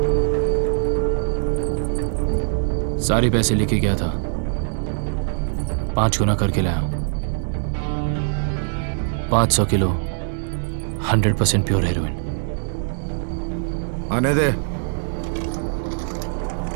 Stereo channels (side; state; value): left; silent; digital silence